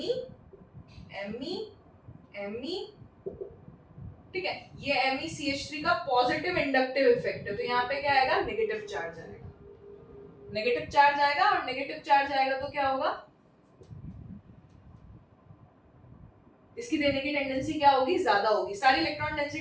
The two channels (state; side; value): identical; both; correlation 1.00